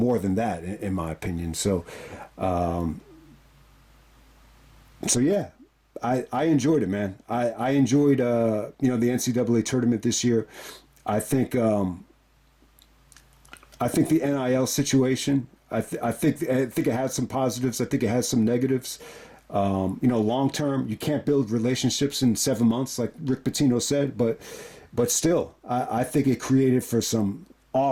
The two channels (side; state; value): both; identical; correlation 1.00